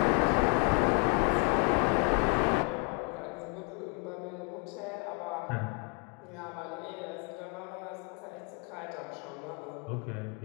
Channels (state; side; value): quieter; right; 36.2 dB